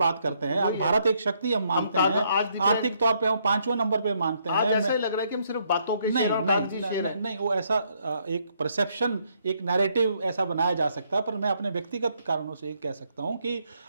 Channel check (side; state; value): both; inverted; correlation -0.72